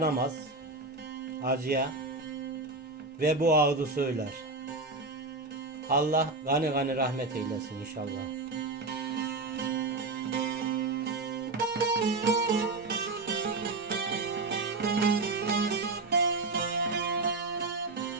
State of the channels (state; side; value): quieter; left; 3.4 dB